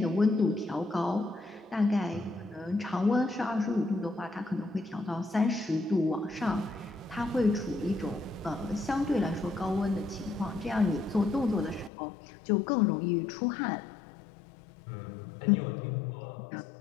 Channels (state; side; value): drops out; right; at 11.9 s